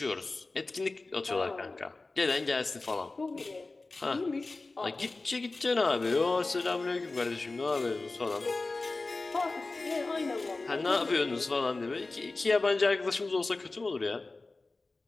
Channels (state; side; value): quieter; right; 3.4 dB